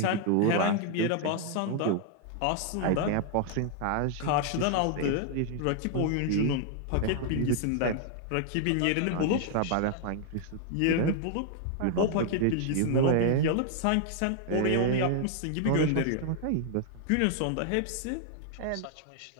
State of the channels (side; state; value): both; different; correlation 0.00